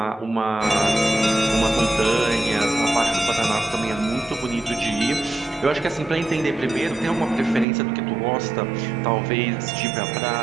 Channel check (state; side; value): drops out; left; at 7.7 s